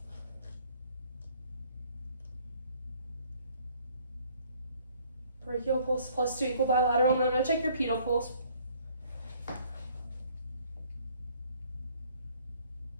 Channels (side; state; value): both; inverted; correlation -0.60